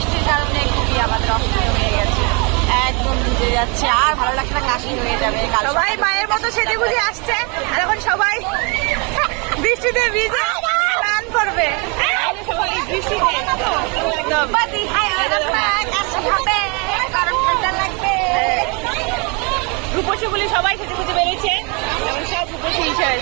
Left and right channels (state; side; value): quieter; left; 32.0 dB